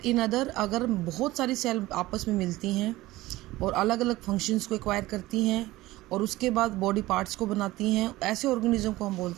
in other अगर बहुत सारी cell आपस में मिलती हैं और अलग अलग फंक्शंस को एक्वायर करती हैं और उसके बाद बॉडी पार्ट्स को बनाती हैं, ऐसे ऑर्गेनिज्म को हम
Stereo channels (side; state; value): left; quieter; 18.0 dB